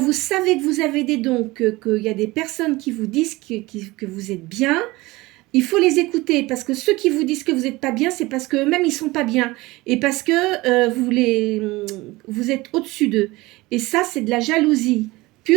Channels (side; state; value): left; quieter; 21.0 dB